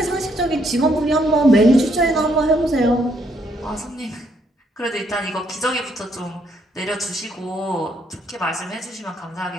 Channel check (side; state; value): both; normal; correlation 0.71